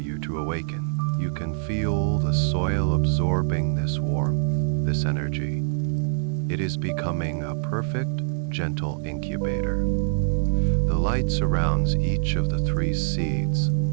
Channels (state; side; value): silent; left; 62 dB below the other